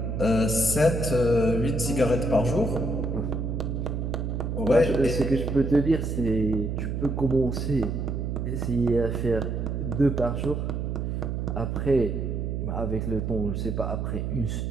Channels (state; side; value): noise; right; hum, 2 dB below the sound